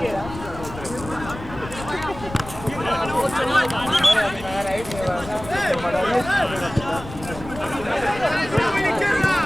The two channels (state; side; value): noise; left; rumble, 13 dB below the sound